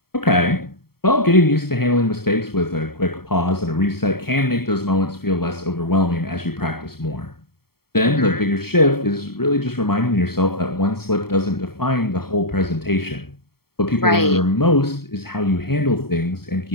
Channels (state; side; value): late; right; 0.95 ms